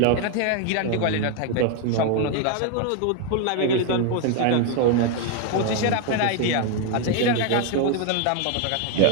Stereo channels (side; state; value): both; different; correlation 0.01